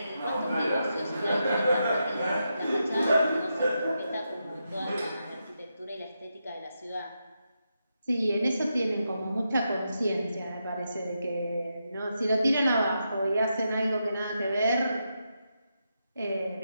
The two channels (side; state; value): both; inverted; correlation -0.85